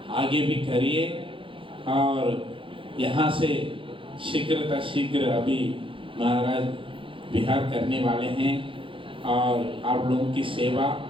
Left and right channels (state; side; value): late; left; 0.25 ms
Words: आगे भी करिए और यहाँ से शीघ्र अभी महाराज विहार करने वाले हैं और आप लोगों की सेवा